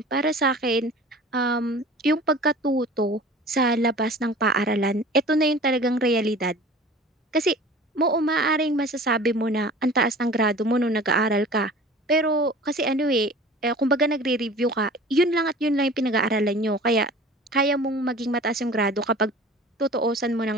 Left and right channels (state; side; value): normal; both; correlation 0.42